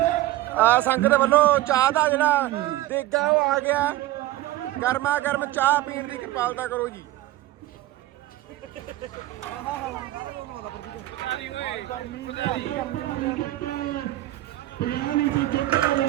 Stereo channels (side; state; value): left; quieter; 15.9 dB